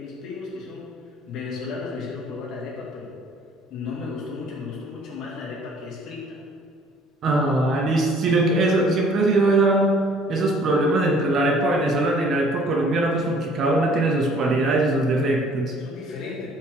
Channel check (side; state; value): both; normal; correlation 0.56